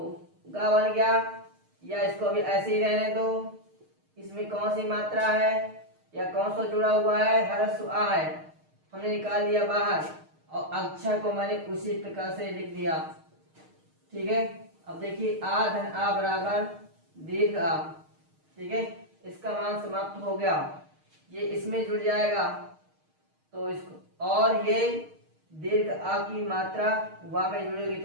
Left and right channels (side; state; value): left; late; 6.5 ms